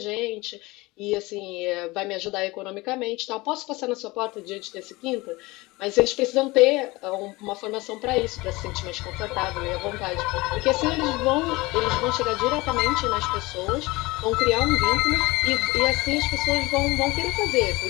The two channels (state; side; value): quieter; right; 22.0 dB